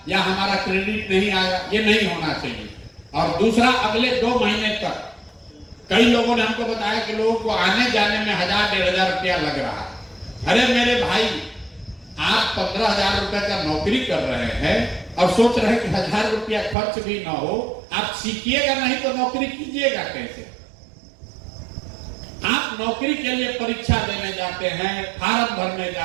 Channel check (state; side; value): drops out; left; at 16.8 s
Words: या हमारा क्रेडिट नहीं आया, ये नहीं होना चाहिए। और दूसरा, अगले 2 महीने तक कई लोगों ने हमको बताया कि लोगों को आने जाने में 1000-1500 रुपया लग रहा है। अरे मेरे भाई, आप 15,000 रुपए का नौकरी कर रहे हैं और सोच रहे हैं कि 1000 रुपया खर्च भी ना हो, आप सीखिएगा नहीं तो नौकरी कीजिएगा कैसे। आप नौकरी के लिए परीक्षा देने जाते हैं, फार्म भरने